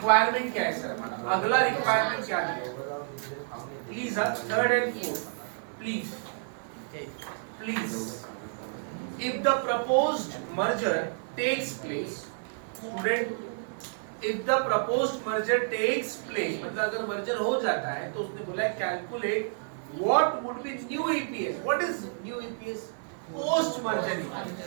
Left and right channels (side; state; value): left; silent; digital silence